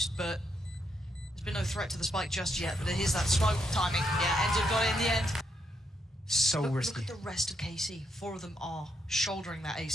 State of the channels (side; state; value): both; normal; correlation 0.79